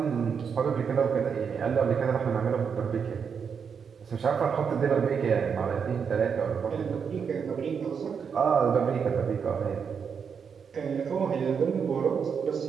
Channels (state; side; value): quieter; left; 6.6 dB